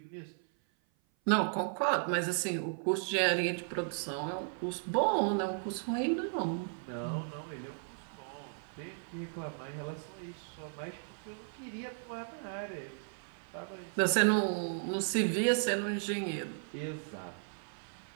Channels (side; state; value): left; silent; 54 dB below the other